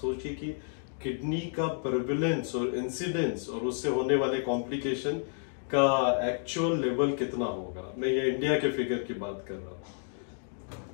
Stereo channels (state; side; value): silent; right; digital silence